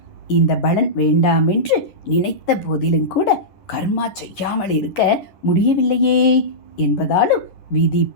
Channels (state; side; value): late; right; 10 ms